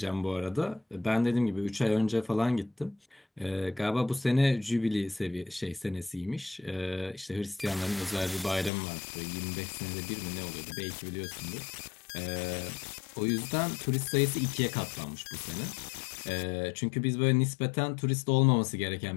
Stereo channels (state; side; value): drops out; right; at 8.7 s